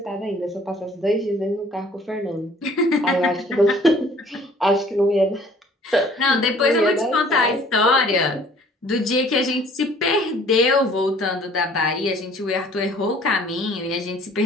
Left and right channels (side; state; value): both; normal; correlation 0.54